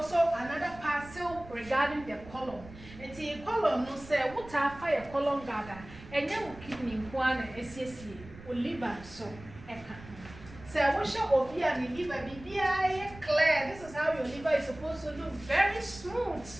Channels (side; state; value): right; noise; rumble, 17 dB below the sound